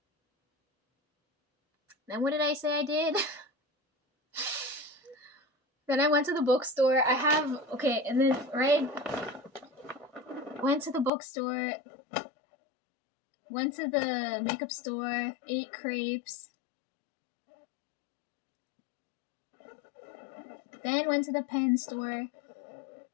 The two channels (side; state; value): right; drops out; at 11.1 s